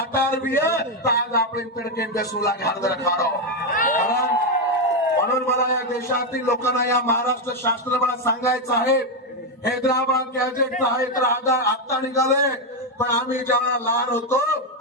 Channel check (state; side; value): normal; both; correlation 0.05